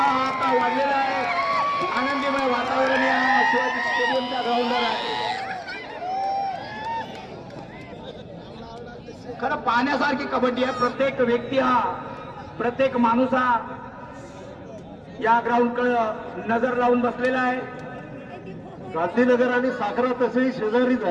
आता वाढलेला आहे. आनंदीमय वातावरण या शिवाजी स्टेडियमच्या ग्राउंडवर आहे. खरं पाहण्यासारखी कबड्डी आहे. प्रत्येक व्यक्ती हा, प्रत्येक माणूस हा या ग्राउंडकडे नजर लावून बसलेला आहे. गांधीनगर आणि साखरा तसेही शेजारीच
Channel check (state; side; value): identical; both; correlation 1.00